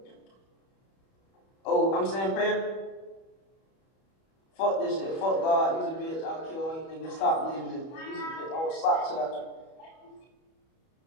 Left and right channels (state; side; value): late; right; 31 ms